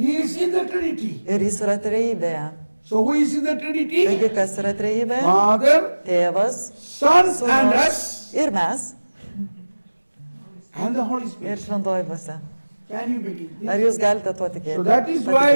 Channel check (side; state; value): both; inverted; correlation -1.00